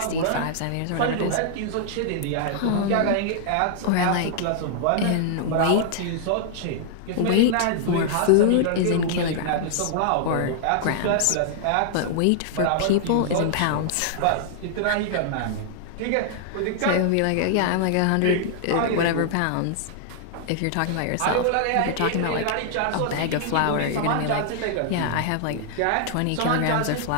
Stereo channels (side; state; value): both; different; correlation -0.01